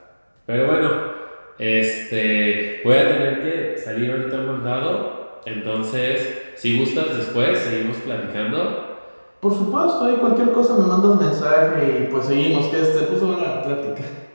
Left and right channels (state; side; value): inverted; both; correlation -1.00